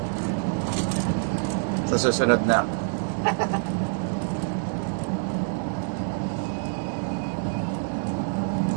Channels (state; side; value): silent; left; 61 dB below the other